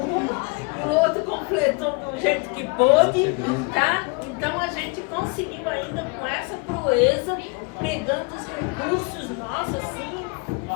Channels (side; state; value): right; quieter; 30.6 dB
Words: e o outro completou do jeito que pôde, tá? Então a gente conseguiu ainda com essa proeza, pegando os recursos nossos, assim,